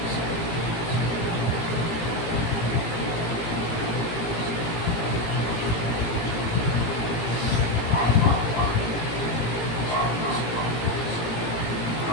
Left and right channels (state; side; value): late; right; 17 ms